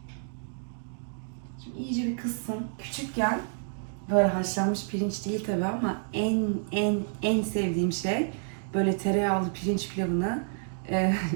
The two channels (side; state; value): left; silent; digital silence